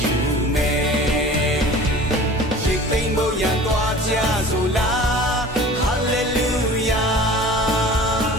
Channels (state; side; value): normal; both; correlation 0.42